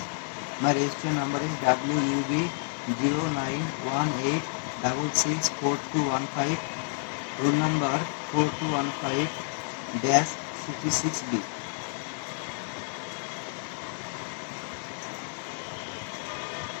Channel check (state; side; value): silent; right; 58 dB below the other